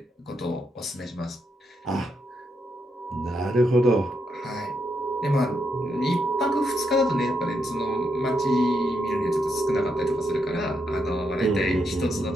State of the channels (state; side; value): normal; both; correlation 0.80